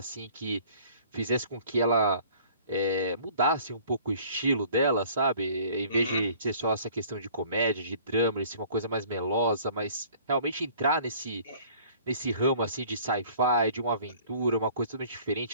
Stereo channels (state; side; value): inverted; both; correlation -0.52